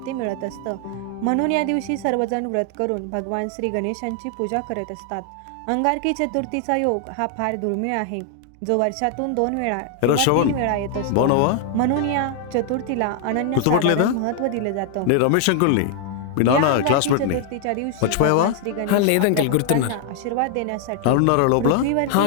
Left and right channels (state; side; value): different; both; correlation 0.00